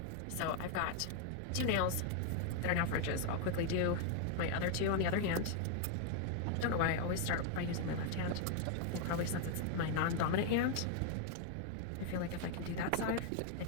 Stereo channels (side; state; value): both; different; correlation 0.00